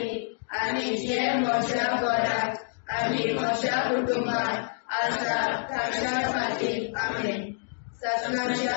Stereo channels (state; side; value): silent; right; digital silence